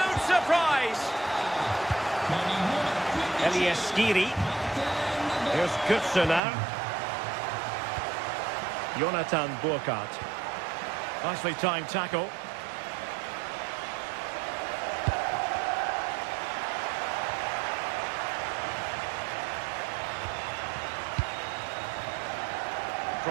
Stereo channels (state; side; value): drops out; left; at 6.4 s